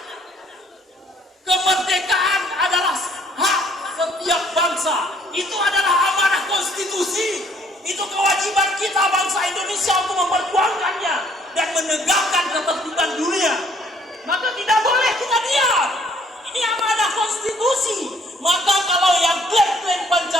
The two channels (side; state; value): both; normal; correlation 0.63